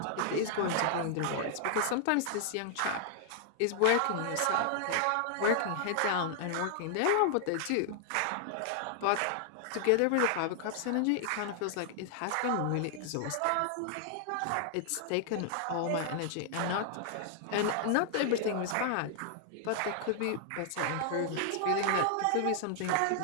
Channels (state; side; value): different; both; correlation -0.01